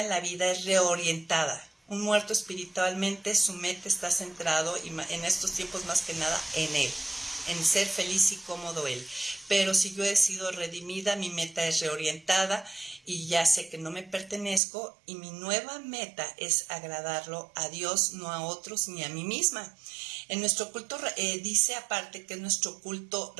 en la vida es reorientada. Un muerto espiritualmente, su meta está centrado, y en estos tiempos más que nada, en Él, en ser feliz y cómodo Él. Pero si yo he sido redimida, mi meta es reorientada y ya sé que no me pertenezco, y mi nueva meta es agradarlo a Dios, no a otros ni a mí misma. En nuestro culto, dice aparte que es nuestro culto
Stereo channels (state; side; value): drops out; left; at 14.6 s